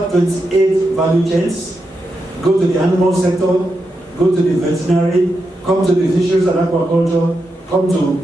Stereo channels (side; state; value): both; normal; correlation 0.86